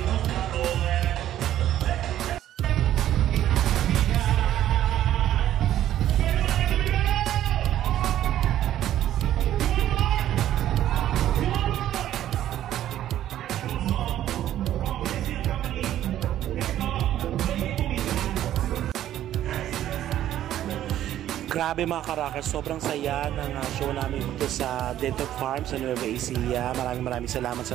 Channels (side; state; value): left; quieter; 12.2 dB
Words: Grabe mga karakers, sobrang saya ng show namin dito sa Dental Farm sa Nueva Ecija. Maraming salamat sa